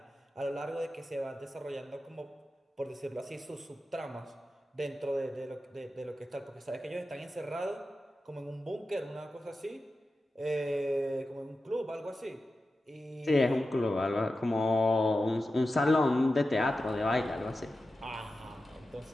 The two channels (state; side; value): normal; both; correlation 0.92